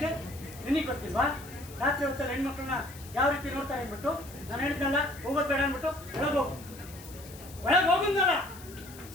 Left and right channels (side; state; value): left; noise; hiss, 18 dB below the sound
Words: ನಿನಗೆ ಗೊತ್ತಿಲ್ವಾ? ರಾತ್ರಿ ಹೊತ್ತಲ್ಲಿ ಹೆಣ್ಮಕ್ಳನ್ನ ಯಾವ ರೀತಿ ನೋಡ್ತಾರೆ ಅಂದ್ಬಿಟ್ಟು ನಾನು ಹೇಳಿದ್ನಲ್ಲ, ಹೋಗೋದು ಬೇಡ ಅಂದ್ಬಿಟ್ಟು ಒಳಗೆ ಹೋಗಿದ್ನಲ್ಲ.